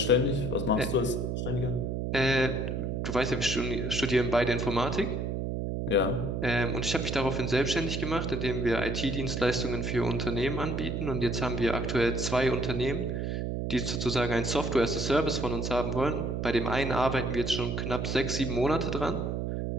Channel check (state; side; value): noise; right; hum, 2 dB below the sound